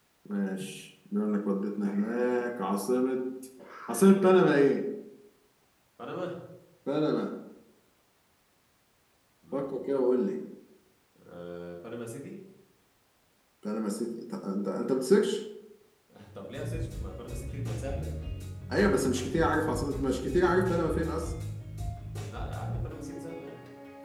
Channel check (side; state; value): both; identical; correlation 1.00